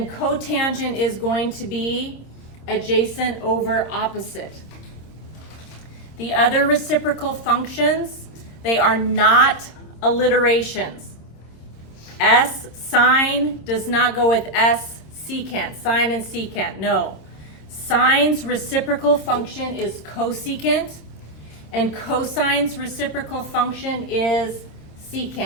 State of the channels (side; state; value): right; late; 26 ms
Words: cotangent is going to be adjacent over opposite. The other reciprocal functions, they are not alliterations. S sine does not go with S secant, sine and secant, no. Sine's reciprocal function is cosecant, and cosine's reciprocal function is